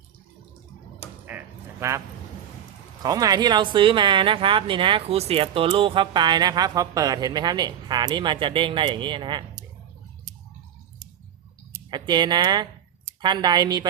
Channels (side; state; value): left; quieter; 9.7 dB